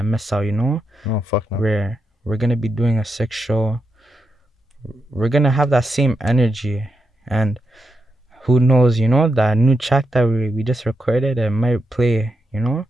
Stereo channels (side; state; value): both; normal; correlation 0.85